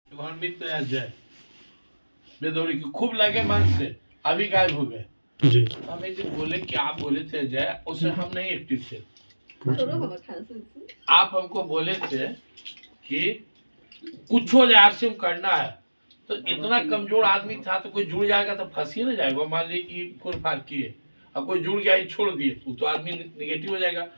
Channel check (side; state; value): both; inverted; correlation -1.00